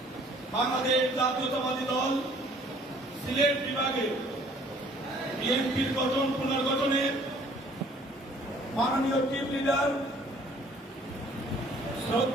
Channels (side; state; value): both; normal; correlation 0.57